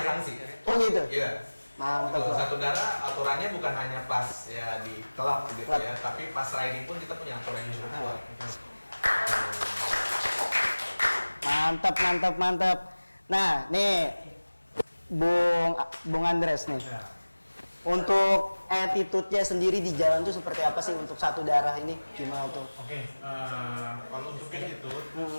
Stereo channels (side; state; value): both; inverted; correlation -1.00